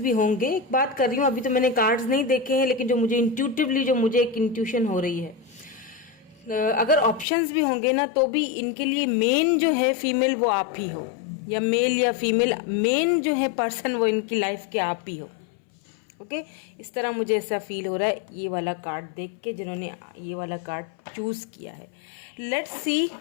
होंगे। एक बात कर रही हूँ, अभी तो मैंने कार्ड्स नहीं देखे हैं, लेकिन जो मुझे इंट्यूटिवली जो मुझे एक इंट्यूशन हो रही है, अगर ऑप्शंस भी होंगे ना, तो भी इनके लिए मेन जो है फीमेल वो आप ही हो, या मेल या फीमेल, मेन जो है पर्सन वो इनकी लाइफ के आप ही हो। ओके, इस तरह मुझे ऐसा फील हो रहा है ये वाला कार्ड देख के, जिन्होंने ये वाला कार्ड चूज किया है। लेट्स सी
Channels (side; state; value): right; drops out; at 7.2 s